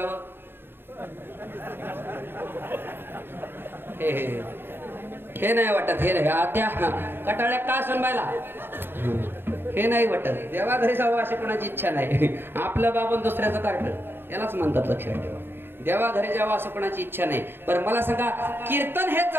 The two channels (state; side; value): late; left; 0.10 ms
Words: हे नाही वाटत. हे नाही, त्या कटाळ्या का सोनबायला हे नाही वाटत. देवा घरी जावं अशी कोणाची इच्छा नाही. आपलं बाबन दुसऱ्याचं कार्ट, यालाच म्हणतात. लक्षात ठेवा, देवा घरी जावं असं कोणाची इच्छा नाही. पण मला सांगा, कीर्तन हे